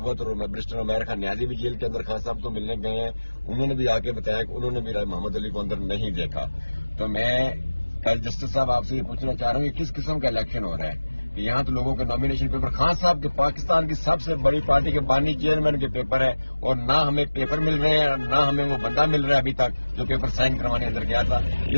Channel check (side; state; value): both; inverted; correlation -1.00